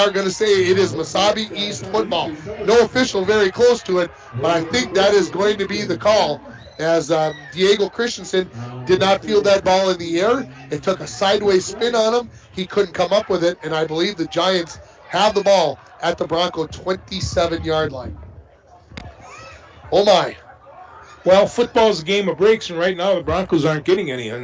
going to say it is Mesabi East football. No official very close to it, but I think that is going to be the call, as Diego Christensen did not field that ball in the air. It took a sideways spin on him. He couldn't come up with it, and I believe the Giants have the ball at the Bronco 27-yard line. Oh my. Well, football's a game of breaks, and right now the Broncos aren't getting any,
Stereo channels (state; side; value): identical; both; correlation 1.00